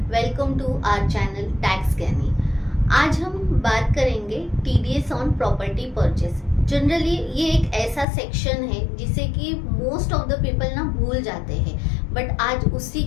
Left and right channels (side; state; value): right; drops out; at 8.1 s